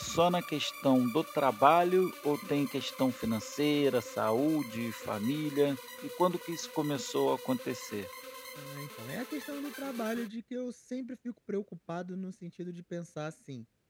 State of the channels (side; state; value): both; identical; correlation 1.00